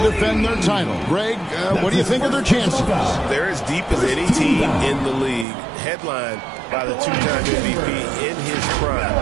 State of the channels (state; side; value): drops out; left; at 5.5 s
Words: defend their title. Greg, what do you think of their chances? They're as deep as any team in the league, headlined by the 2-time MVP in his